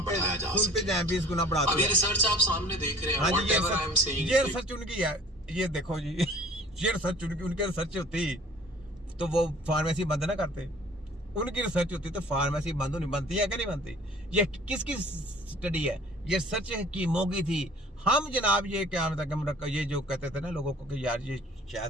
बढ़ाया जा सके। 20 गुना बढ़ाते हैं। अब ये रिसर्च आप सामने देख रहे हैं। हाँ जी, Whatever I am saying, ये रिसर्च उनकी है, ये देखो जी, ये रिसर्च उनकी रिसर्च होती तो वो फार्मेसी बंद ना करते। उनकी रिसर्च होती तो फार्मेसी बंद नहीं बनती है कि नहीं बनती। ये किसकी स्टडी है? ये सच हकीमों की थी। हम जनाब ये क्या मतलब मुरक्कब, ये जो कहते थे ना लोगों को कि यार ये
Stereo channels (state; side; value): normal; both; correlation 0.49